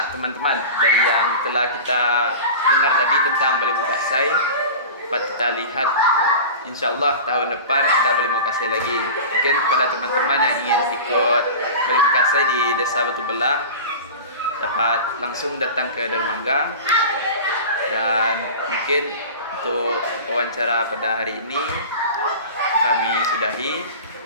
teman-teman, dari yang telah kita dengar tadi tentang Bali Mau Kasih, dapat kita lihat insya Allah tahun depan ada Bali Mau Kasih lagi. Mungkin kepada teman-teman yang ingin ikut Bali Mau Kasih di Desa Batu Belah dapat langsung datang ke dermaga. Dan mungkin untuk wawancara pada hari ini kami sudahi.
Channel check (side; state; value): both; inverted; correlation -0.33